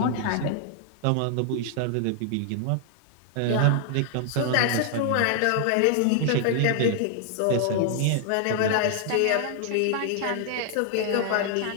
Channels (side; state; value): both; different; correlation 0.00